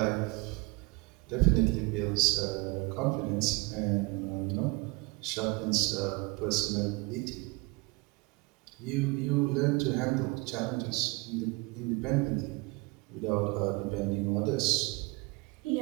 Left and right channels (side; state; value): left; quieter; 26.5 dB